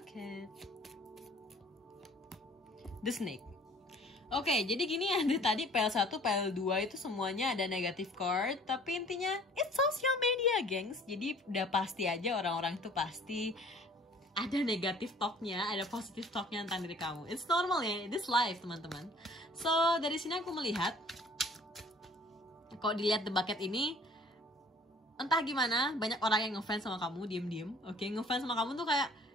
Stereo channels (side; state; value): both; normal; correlation 0.53